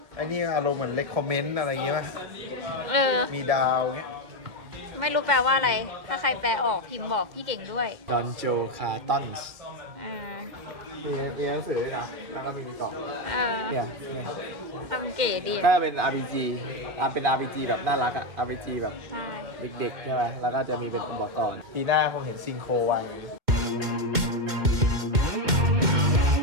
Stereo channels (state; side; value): late; left; 2.1 ms